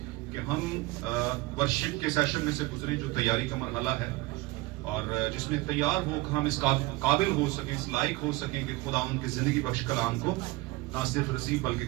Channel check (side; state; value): left; quieter; 21.2 dB